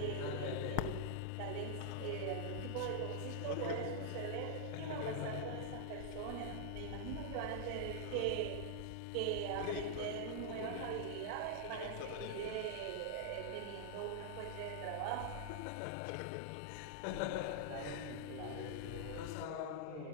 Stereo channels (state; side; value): different; both; correlation -0.01